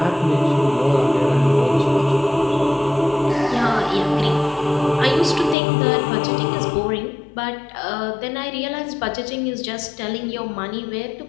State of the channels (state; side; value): drops out; right; at 5.6 s